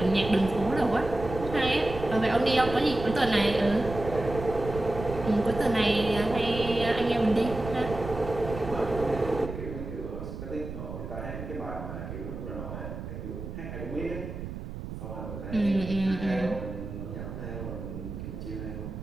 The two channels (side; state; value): right; noise; rumble, 8 dB below the sound